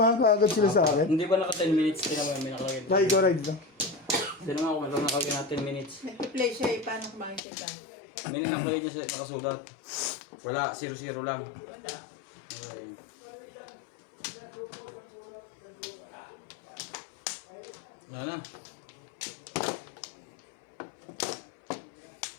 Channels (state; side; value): drops out; right; at 7.4 s